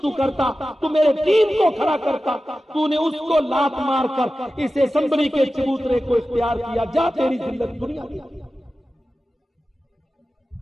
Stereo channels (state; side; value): normal; both; correlation 0.94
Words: تو کرتا، تو میرے دین کو کھڑا کرتا، تو نے اس کو لات مار کر اس اسمبلی کے چبوترے کو اختیار کیا، جا تیری ذلت دنیا دی۔